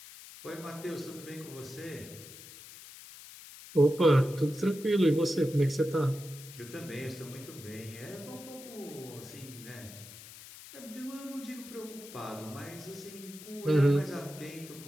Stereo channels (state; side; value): noise; left; hiss, 16 dB below the sound